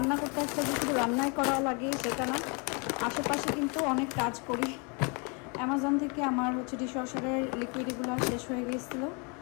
করতে আসলে যে শুধু রান্নাই করা লাগে সেটা না, আশেপাশে কিন্তু অনেক কাজ করি। অ্যামাজন থেকে আমার হচ্ছে ডিশওয়াশারের লিকুইডগুলো শেষ হয়ে গিয়েছিলো,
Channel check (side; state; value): right; quieter; 33.1 dB